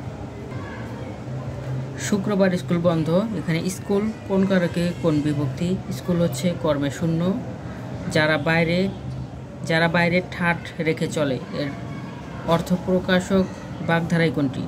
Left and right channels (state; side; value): identical; both; correlation 1.00